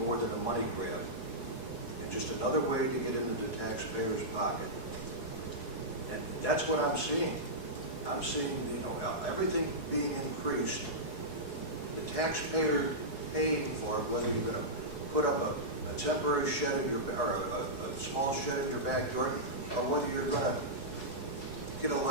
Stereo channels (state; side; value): late; right; 4.7 ms